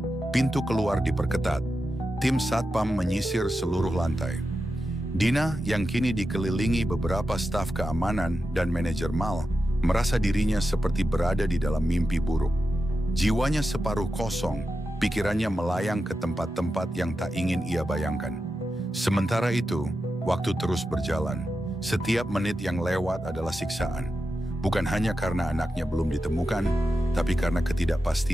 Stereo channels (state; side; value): normal; both; correlation 0.90